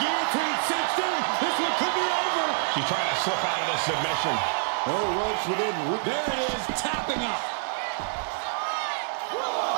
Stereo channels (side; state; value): left; silent; 58 dB below the other